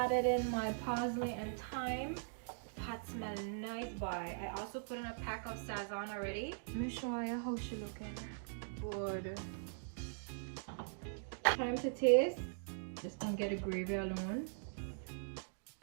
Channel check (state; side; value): silent; left; digital silence